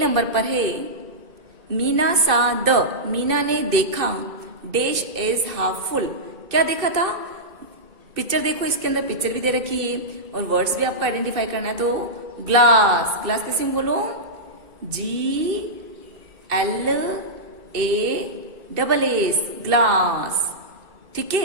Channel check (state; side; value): late; left; 2.6 ms